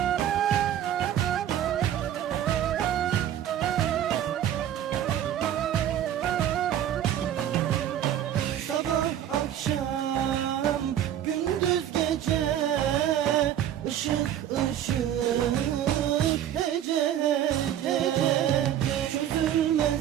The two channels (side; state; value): left; quieter; 10.8 dB